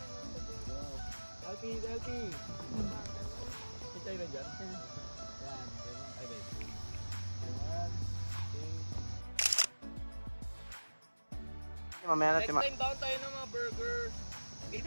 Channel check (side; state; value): both; inverted; correlation -1.00